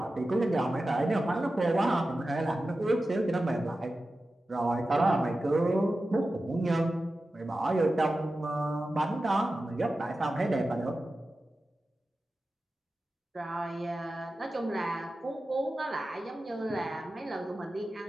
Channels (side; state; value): both; normal; correlation 0.93